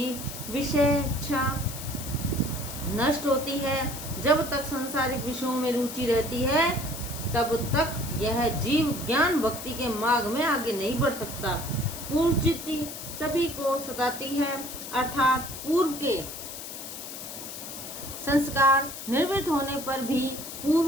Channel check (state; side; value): noise; left; hiss, 10 dB below the sound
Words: विषयेच्छा नष्ट होती है। जब तक सांसारिक विषयों में रुचि रहती है तब तक यह जीव ज्ञान भक्ति के मार्ग में आगे नहीं बढ़ सकता। पूर्व चित्ती सभी को सताती है, अर्थात पूर्व के संस्कार निवृत्त होने पर भी पूर्व